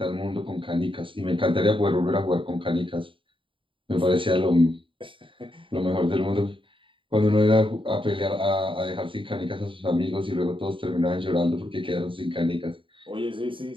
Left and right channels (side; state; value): left; late; 0.25 ms